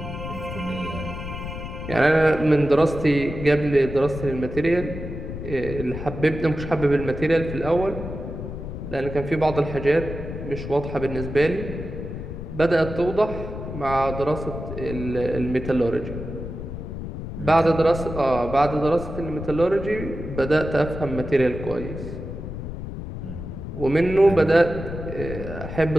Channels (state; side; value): noise; left; rumble, 8 dB below the sound